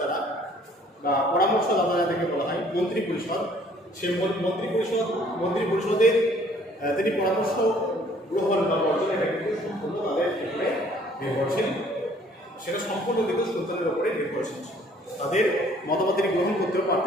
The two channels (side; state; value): both; normal; correlation 0.58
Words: বা পরামর্শদাতা যাদেরকে বলা হয় মন্ত্রী পরিষদ, সেই মন্ত্রী পরিষদের তিনি পরামর্শ গ্রহণ বা বর্জন এটা কিন্তু সম্পূর্ণ তাদের উপরে নির্ভরশীল, সেটা সম্পূর্ণ কিন্তু সুলতানের উপরে নির্ভরশীল ছিল। তাদের মতামত তিনি গ্রহণ করতেও